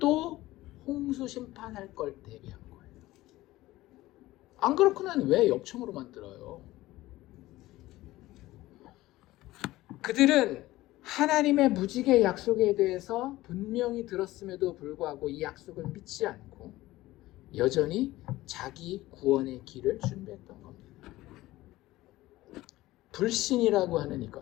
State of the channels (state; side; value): quieter; right; 17.3 dB